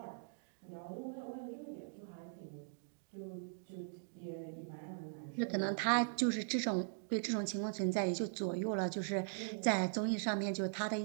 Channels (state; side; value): silent; left; digital silence